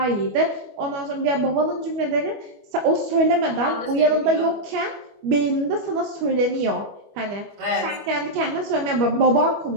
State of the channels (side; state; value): left; late; 25 ms